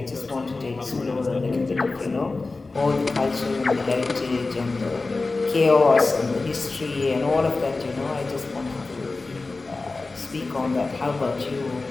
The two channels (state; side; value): quieter; right; 3.6 dB